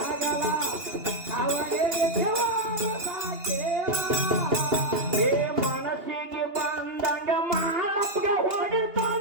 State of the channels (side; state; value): left; late; 2.8 ms